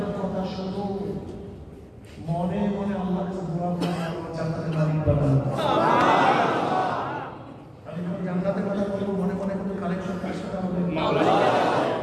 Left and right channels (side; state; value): both; identical; correlation 1.00